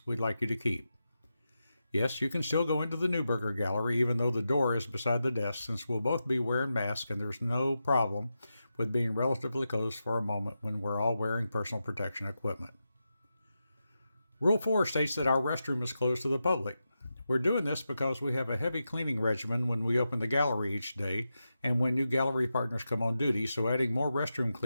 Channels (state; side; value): inverted; both; correlation -0.89